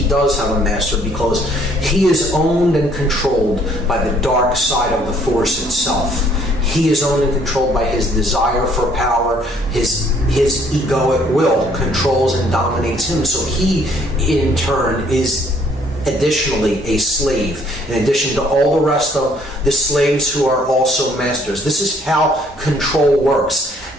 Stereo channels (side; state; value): both; normal; correlation 0.62